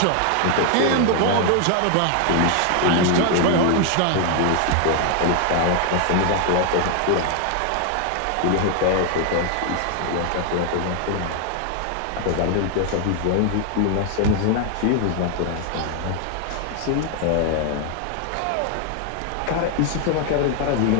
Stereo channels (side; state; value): both; different; correlation 0.00